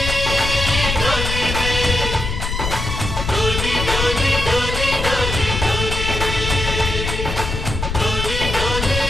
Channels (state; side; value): noise; left; rumble, 3 dB below the sound